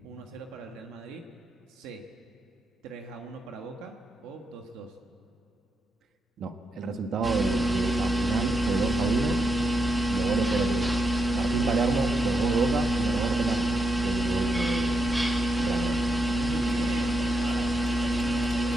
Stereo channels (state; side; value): normal; both; correlation 0.83